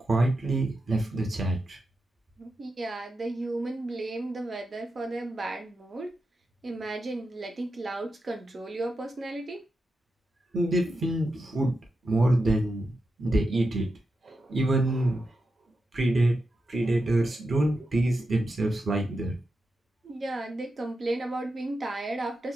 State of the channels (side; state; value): both; normal; correlation 0.89